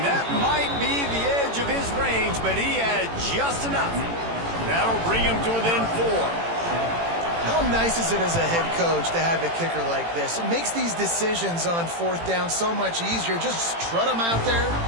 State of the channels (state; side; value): late; left; 18 ms